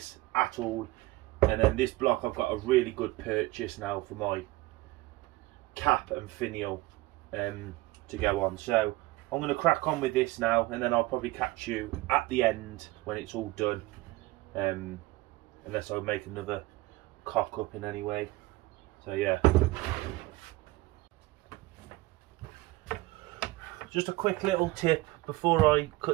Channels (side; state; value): left; quieter; 19.6 dB